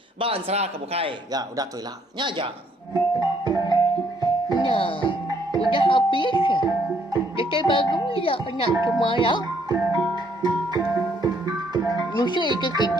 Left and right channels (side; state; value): both; normal; correlation 0.67